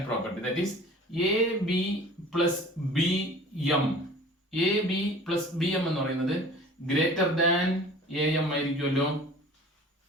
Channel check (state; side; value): normal; both; correlation 0.45